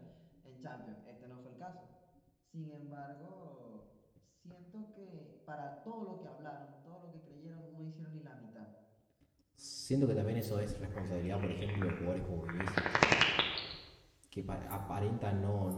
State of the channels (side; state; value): both; identical; correlation 1.00